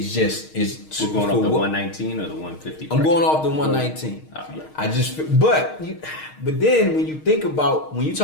just We're going off the 119 or the 150. I'm going off the 119. I just, but then when you think about, when you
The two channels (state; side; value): late; right; 6.4 ms